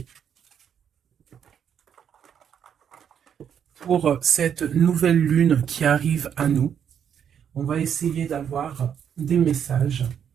pour cette nouvelle lune qui arrive à nous. On va essayer d'avoir des messages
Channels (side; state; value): left; quieter; 8.4 dB